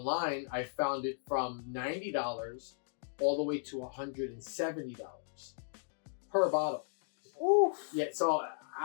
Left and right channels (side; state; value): right; silent; digital silence